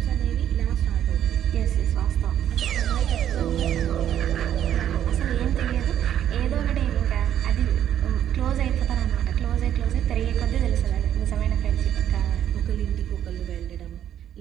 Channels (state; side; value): quieter; left; 10.5 dB